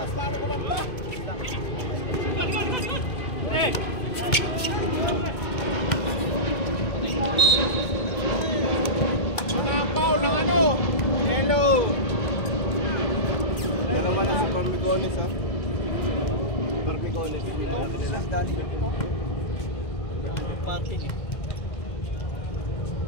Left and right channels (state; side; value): late; right; 2.2 ms